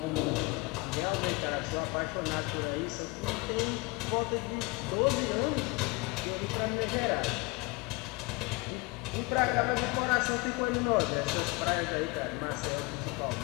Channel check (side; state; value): right; quieter; 25.3 dB